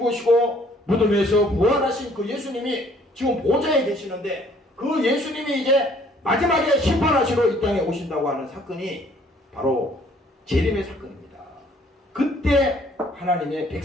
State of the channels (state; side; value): normal; both; correlation 0.60